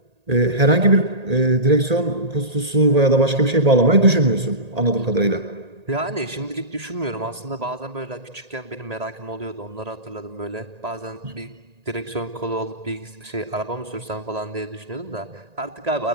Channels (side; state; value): left; late; 1.8 ms